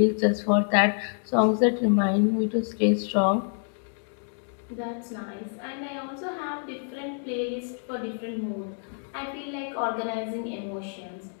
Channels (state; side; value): silent; right; 60 dB below the other